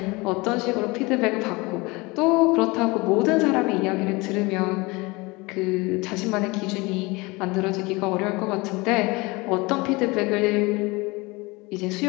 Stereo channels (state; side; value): quieter; right; 24.3 dB